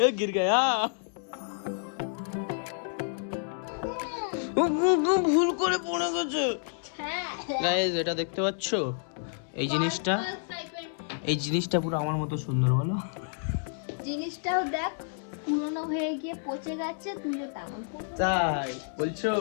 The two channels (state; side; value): silent; right; digital silence